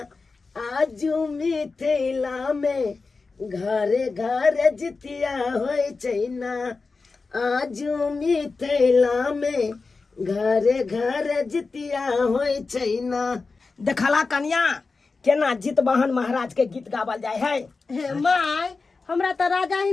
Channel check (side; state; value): right; quieter; 4.2 dB